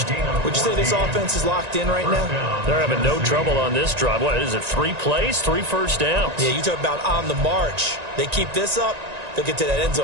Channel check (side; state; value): left; late; 1.9 ms